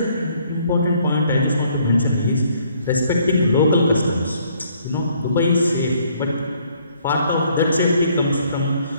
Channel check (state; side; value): inverted; both; correlation -0.64